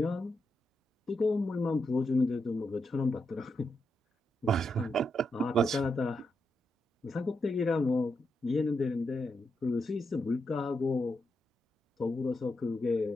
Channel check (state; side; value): normal; both; correlation 0.84